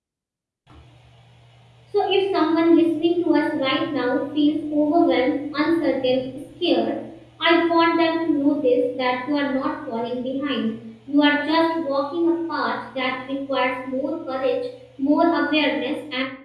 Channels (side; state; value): both; identical; correlation 1.00